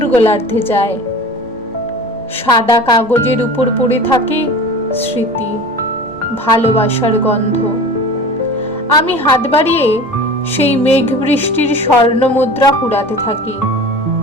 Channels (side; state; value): both; normal; correlation 0.37